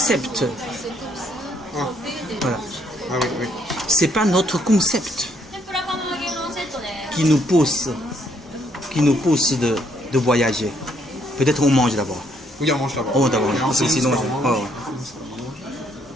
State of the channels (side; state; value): both; normal; correlation 0.70